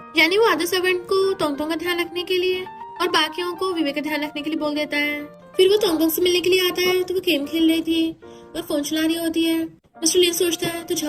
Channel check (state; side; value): identical; both; correlation 1.00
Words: यानी वो आधे सर्वेंट को तोंगतोंग का ध्यान रखने के लिए और बाकियों को विवेक का ध्यान रखने के लिए बोल देता है। फिर वो तोंगतोंग से मिलने के लिए आता है तो वो गेम खेल रही थी और फोन चला रही होती है। मिस्टर लिन सोचता है तो